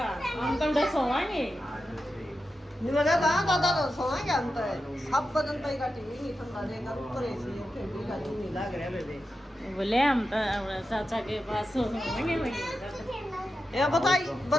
हम तो सोवांगे। नहीं मजा दादा तो सोएंगे हम तो सब बदन पे का टीवी नहीं ठंडा देगा ऊपर एसी है फिर भी का नहीं लग रहा बेबे। बोले हम तो चाचा के पास सोएंगे वही। ये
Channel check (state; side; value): normal; both; correlation 0.90